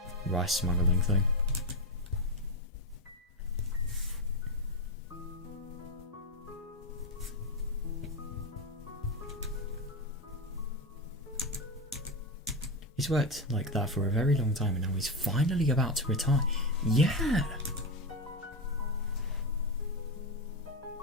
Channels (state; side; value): normal; both; correlation 0.13